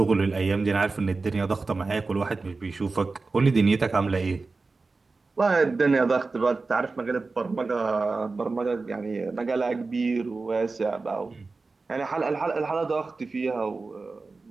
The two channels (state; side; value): quieter; left; 3.9 dB